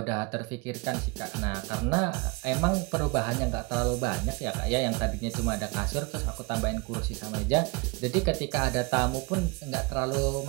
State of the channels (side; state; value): left; quieter; 27.0 dB